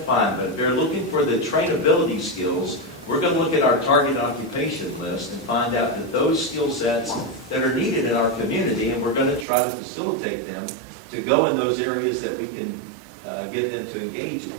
fine. But if they're looking for the trainability skills, we're going to look at our target occupation list and find out that those skill sets that are needed in our community, and we're going to try to facilitate them to go in those areas that we can get them to engage in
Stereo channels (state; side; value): drops out; left; at 9.5 s